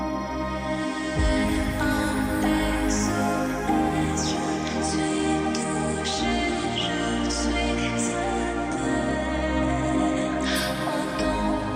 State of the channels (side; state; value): both; identical; correlation 1.00